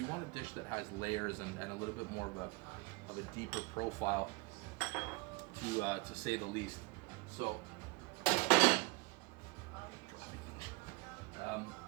want a dish that has layers and a little bit more of a deeper profile, to say the least. So,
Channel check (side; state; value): left; quieter; 24.7 dB